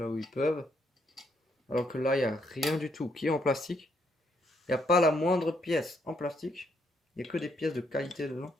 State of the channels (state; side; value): normal; both; correlation 0.73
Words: où ils peuvent. Alors que là, il n'y a rien du tout qui est en plastique. Il n'y a pas la moindre pièce en plastique. Il n'y a que des pièces de qualité dedans.